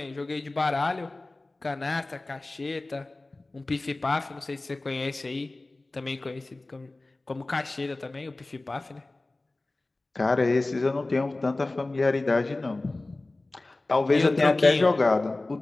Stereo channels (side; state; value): right; quieter; 3.0 dB